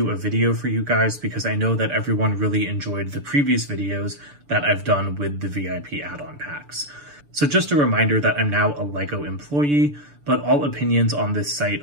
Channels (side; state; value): left; late; 6.9 ms